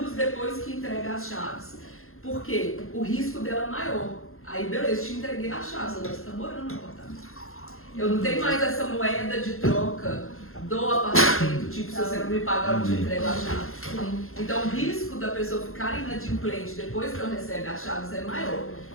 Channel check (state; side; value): late; right; 0.62 ms